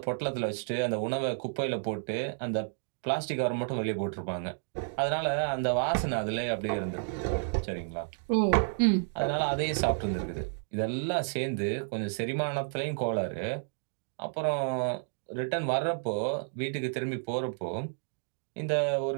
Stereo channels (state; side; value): silent; left; digital silence